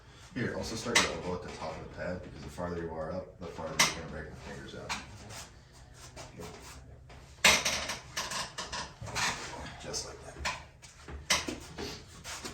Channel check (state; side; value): identical; both; correlation 1.00